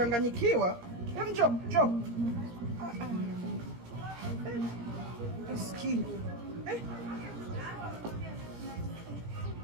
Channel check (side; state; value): left; late; 17 ms